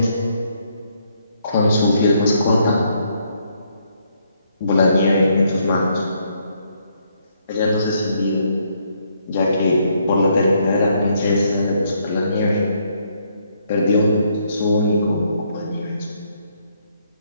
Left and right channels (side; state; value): both; inverted; correlation -0.72